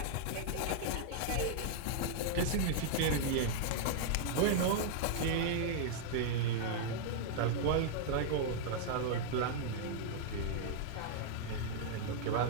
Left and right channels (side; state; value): both; different; correlation -0.01